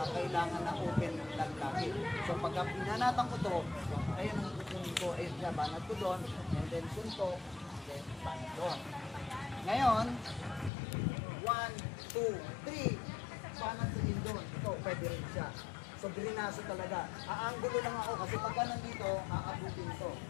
kailangan na open lang lagi. So pagka pinanatan ko to, ayun ang kukunin ko, ayun siya, banat ko doon, and then suntok, then banat doon. Ngayon, 1, 2, 3, banat sa din doon. Ito, pwede rin siya. So drinaso talaga. Aangulo lang ako kasi pagka nandito, aabutin ito.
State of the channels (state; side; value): drops out; right; at 10.7 s